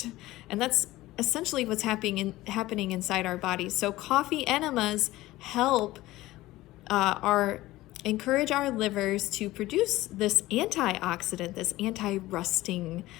and that's essentially what's happening inside our bodies. So coffee enemas help encourage our livers to produce this antioxidant, this anti-rusting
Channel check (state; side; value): quieter; right; 17.5 dB